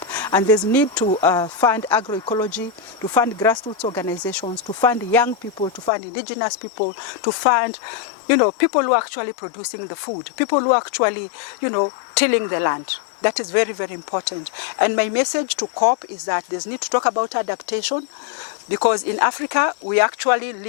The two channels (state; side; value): drops out; right; at 5.9 s